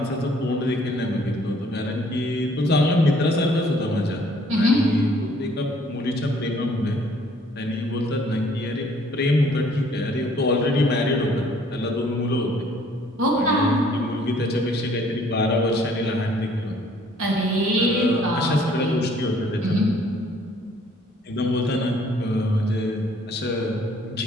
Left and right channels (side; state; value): both; normal; correlation 0.60